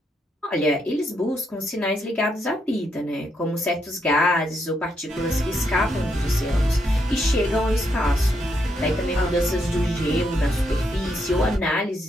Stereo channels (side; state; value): both; normal; correlation 0.78